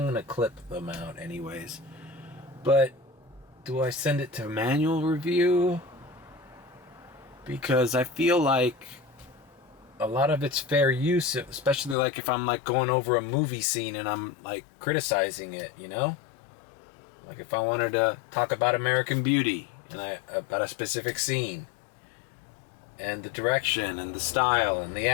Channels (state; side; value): drops out; right; at 12.0 s